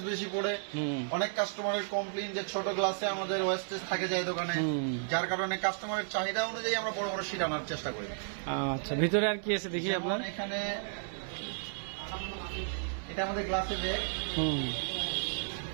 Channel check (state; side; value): silent; left; 56 dB below the other